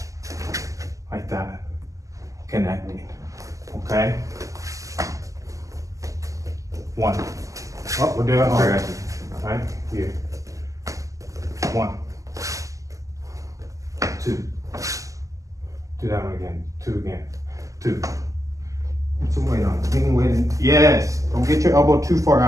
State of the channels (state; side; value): late; left; 0.16 ms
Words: like that, connecting, okay? One. Oh, we're doing it. Right? Here. One. Two. Do that one again. Two again. Two. Put some weight on it. Any weight in. Yes. Don't get your elbow too far